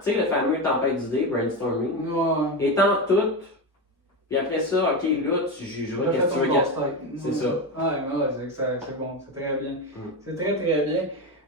tu sais le fameux tempête d'idées, brainstorming, étant toutes Puis après ça, ok, là, tu jugeras J'ai qu'est-ce fait que tu veux ton garder. casse-tête. C'est ça. Ouais, c'est bon, c'est très bien. C'est très très bien.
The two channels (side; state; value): both; normal; correlation 0.16